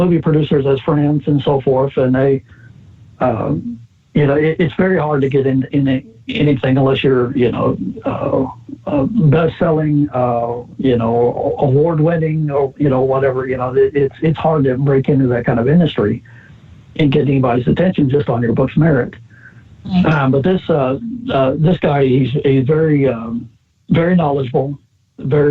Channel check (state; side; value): identical; both; correlation 1.00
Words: producers as friends and so forth, and they, it's very hard to get in anything unless you're, best-selling, award-winning, or whatever. It's hard to break into that kind of industry and get anybody's attention just on your book's merit. But this guy, he's very very knowledgeable.